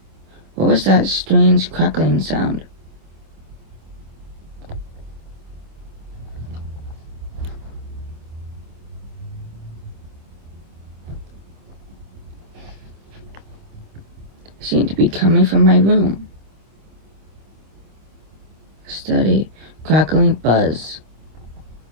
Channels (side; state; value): left; late; 26 ms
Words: What was that strange crackling sound? It seemed to be coming from my room. A steady, crackling buzz.